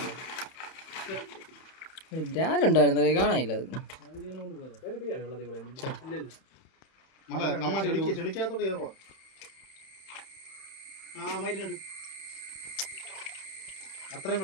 ബ്രാലുണ്ടായിരുന്നേ കാണാനില്ല അത് ചെളിക്കാത്തോട്ട് കയറുവാ അത്രയും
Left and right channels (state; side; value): late; right; 31 ms